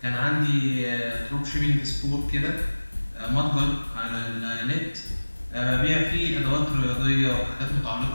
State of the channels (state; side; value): inverted; both; correlation -1.00